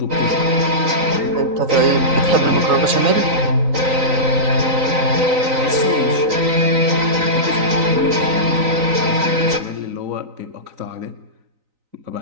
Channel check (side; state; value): left; late; 3.9 ms